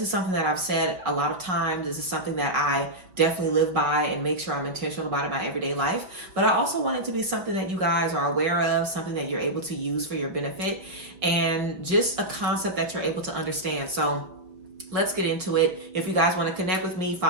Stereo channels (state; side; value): late; left; 5.4 ms